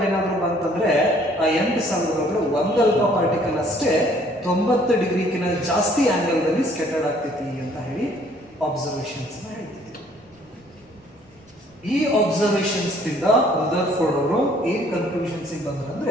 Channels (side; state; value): both; normal; correlation 0.60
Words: ಏನಾದರೂ ಬಂತಂದ್ರೆ ಆ 8000 ಒಳಗಡೆ ಒಂದು ಅಲ್ಫಾ ಪಾರ್ಟಿಕಲ್ ಅಷ್ಟೇ 90 ಡಿಗ್ರಿಗಿಂತ ಜಾಸ್ತಿ ಆಂಗಲ್ ದಲ್ಲಿ ಸ್ಕ್ಯಾಟರ್ಡ್ ಆಗ್ತೈತಿ ಅಂತ ಹೇಳಿ ಅಬ್ಸರ್ವೇಷನ್ಸ್ ಹೇಳ್ತಿದ್ರು. ಈ ಅಬ್ಸರ್ವೇಷನ್ಸ್ ದಿಂದ ರದರ್ಫೋರ್ಡ್ ಅವರು ಏನ್ ಕನ್ಕ್ಲೂಷನ್ಸ್